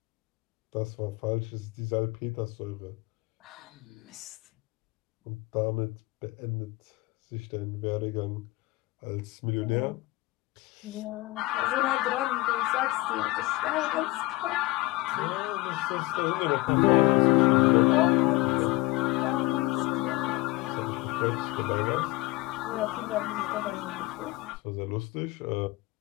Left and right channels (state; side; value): quieter; right; 20.8 dB